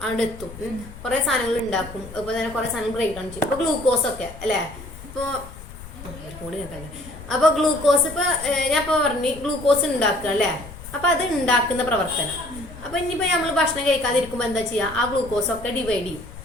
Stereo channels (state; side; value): noise; left; rumble, 15 dB below the sound